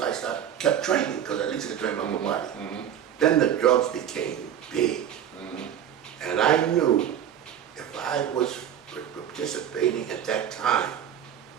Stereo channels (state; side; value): quieter; left; 9.7 dB